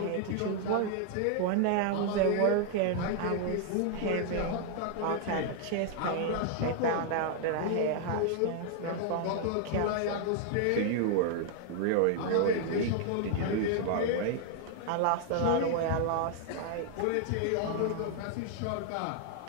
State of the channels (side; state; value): both; different; correlation 0.00